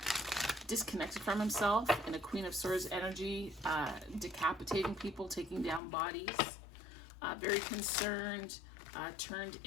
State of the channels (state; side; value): drops out; right; at 5.8 s